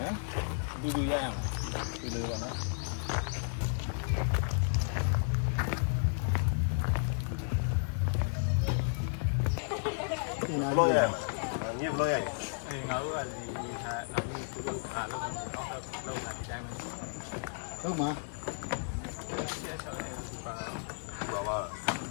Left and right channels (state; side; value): silent; right; digital silence